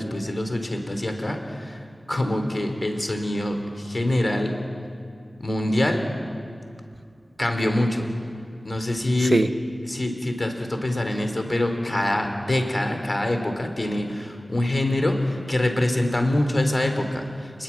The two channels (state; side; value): normal; both; correlation 0.96